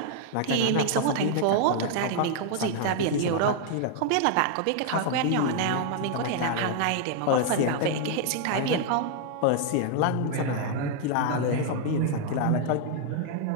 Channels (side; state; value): both; different; correlation 0.00